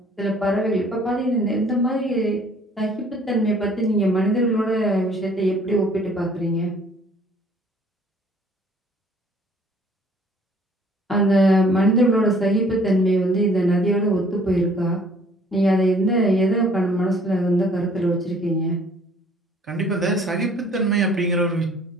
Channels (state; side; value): normal; both; correlation 0.57